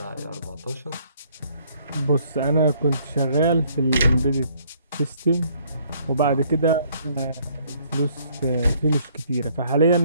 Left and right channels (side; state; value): both; inverted; correlation -0.64